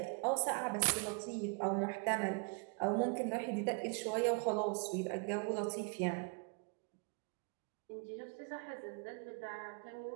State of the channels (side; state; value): left; quieter; 36.2 dB